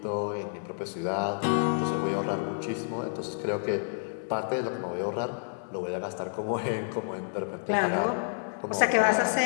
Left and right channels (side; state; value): right; silent; digital silence